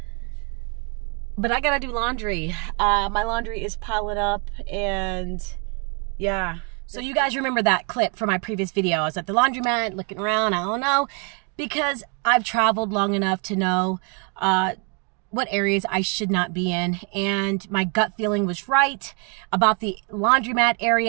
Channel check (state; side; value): quieter; left; 36.6 dB